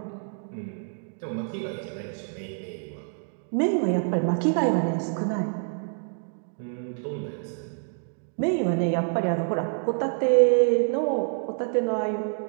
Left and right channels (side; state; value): left; silent; 60 dB below the other